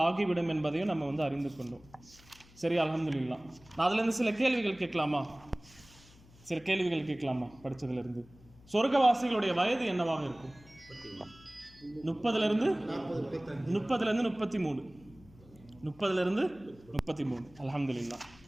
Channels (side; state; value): left; noise; hum, 24 dB below the sound